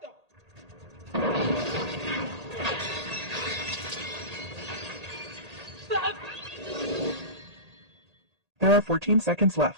up. There are 14 seconds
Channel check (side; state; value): left; late; 1.8 ms